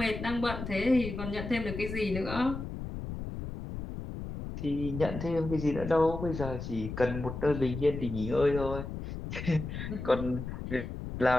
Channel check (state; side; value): noise; left; rumble, 7 dB below the sound